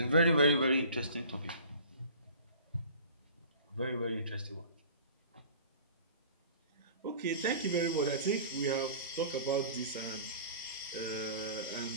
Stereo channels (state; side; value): inverted; both; correlation -0.44